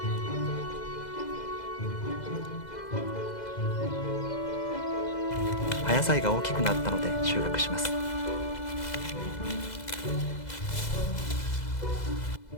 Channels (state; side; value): late; right; 2.0 ms